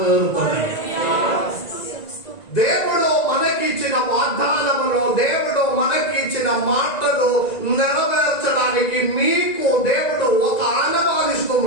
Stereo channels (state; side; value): late; right; 1.9 ms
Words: దేవుడు మనకిచ్చిన వాగ్దానములో దేవుడు మనకిచ్చిన మాటలు నెరవేర్చడానికి మీకు దేవుడు ఒక